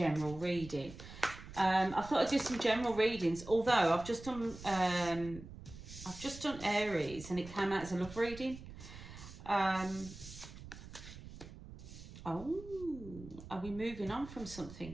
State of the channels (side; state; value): right; noise; rumble, 14 dB below the sound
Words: reading. I thought I'd do some general readings, although I've just done Aries and it came out as a love reading. Oh, are we moving on from